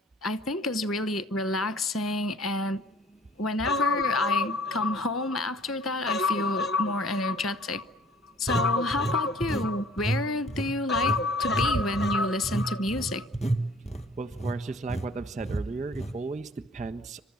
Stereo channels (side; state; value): both; normal; correlation 0.53